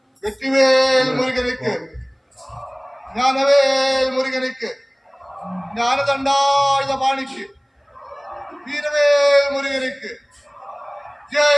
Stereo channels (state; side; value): identical; both; correlation 1.00